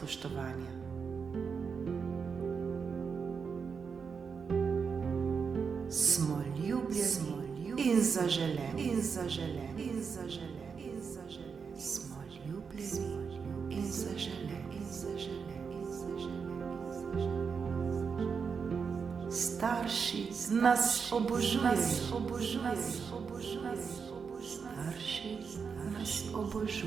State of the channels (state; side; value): quieter; left; 5.9 dB